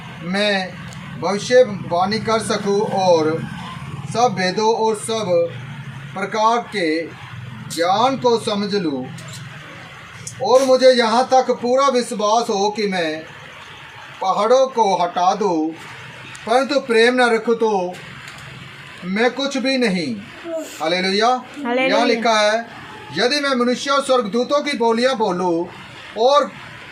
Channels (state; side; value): identical; both; correlation 1.00